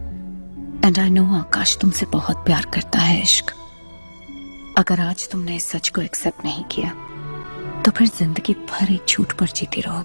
एंड आई नो आकाश तुमसे बहुत प्यार करता है इश्क। अगर आज तुमने इस सच को एक्सेप्ट नहीं किया तो फिर जिंदगी भर एक झूठ पर जीती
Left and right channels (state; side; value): inverted; both; correlation -1.00